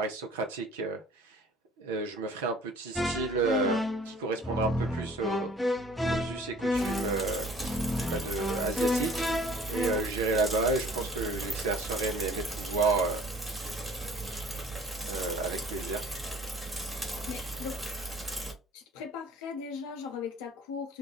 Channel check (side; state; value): both; normal; correlation 0.52